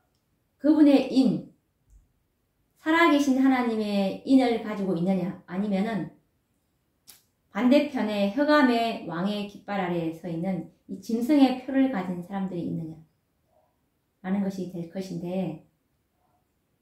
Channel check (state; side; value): identical; both; correlation 1.00